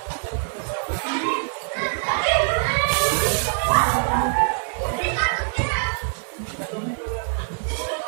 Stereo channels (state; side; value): silent; left; digital silence